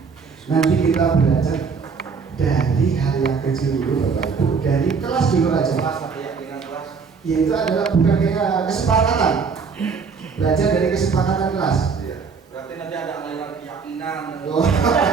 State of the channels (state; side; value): quieter; left; 5.5 dB